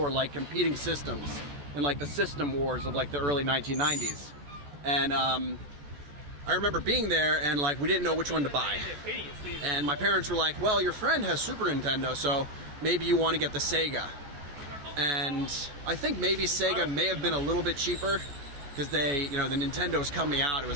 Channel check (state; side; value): late; left; 14 ms